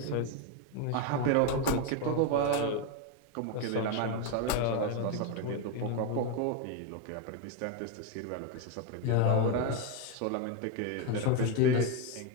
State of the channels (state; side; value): different; both; correlation 0.02